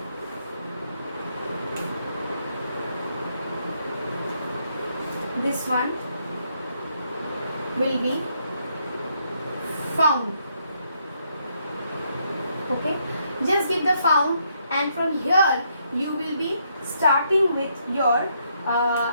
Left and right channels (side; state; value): both; inverted; correlation -0.75